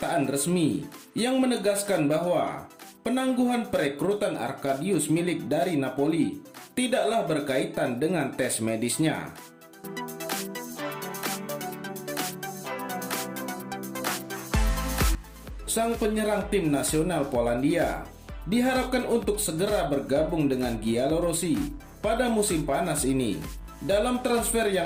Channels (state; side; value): identical; both; correlation 1.00